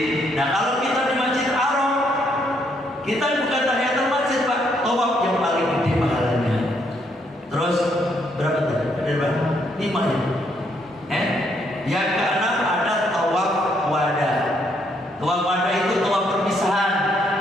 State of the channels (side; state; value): both; normal; correlation 0.72